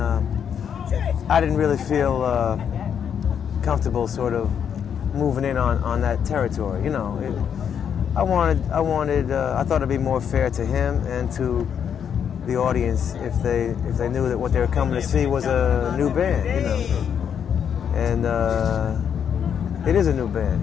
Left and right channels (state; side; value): quieter; right; 8.0 dB